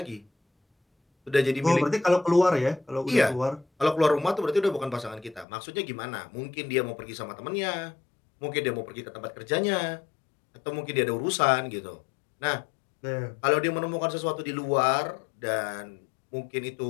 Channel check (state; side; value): drops out; right; at 5.5 s